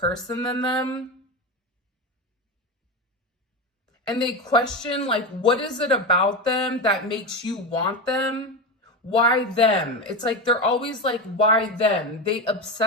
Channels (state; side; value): normal; both; correlation 0.18